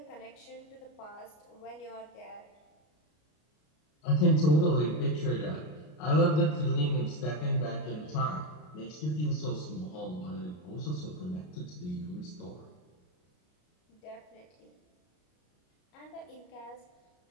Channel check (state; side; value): late; right; 33 ms